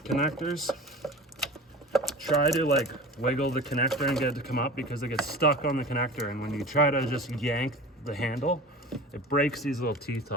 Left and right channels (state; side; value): normal; both; correlation 0.36